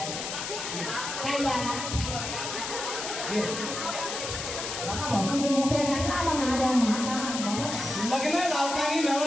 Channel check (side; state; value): left; noise; hiss, 5 dB below the sound